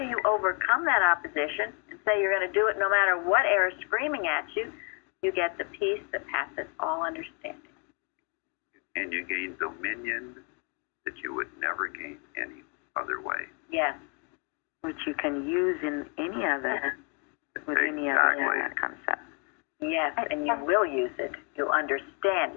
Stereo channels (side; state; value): right; quieter; 37.6 dB